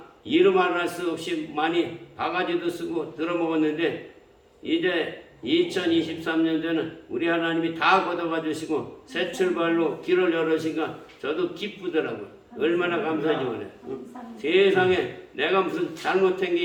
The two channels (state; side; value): identical; both; correlation 1.00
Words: 이름할 수 없이 많이 바가지도 쓰고 들어먹었는데 이제 2023년도에는 우리 하나님이 다 걷어가 주시고 새 출발로 길을 열으시니까 저도 기쁘더라고요. 얼마나 감사하지 그래. 세상에 내가 무슨 잘못한